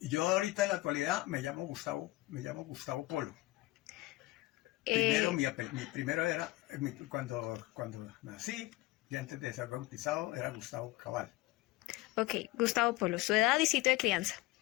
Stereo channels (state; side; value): quieter; right; 19.7 dB